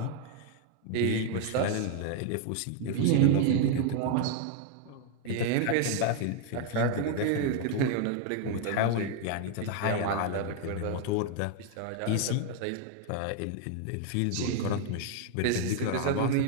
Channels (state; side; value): different; both; correlation 0.00